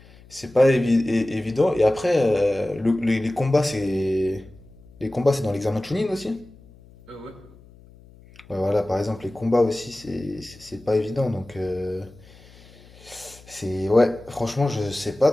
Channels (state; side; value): noise; left; hum, 24 dB below the sound